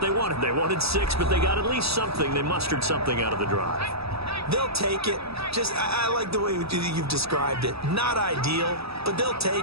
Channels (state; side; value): late; left; 0.78 ms